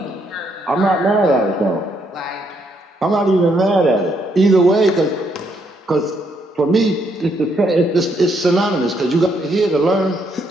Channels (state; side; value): normal; both; correlation 0.73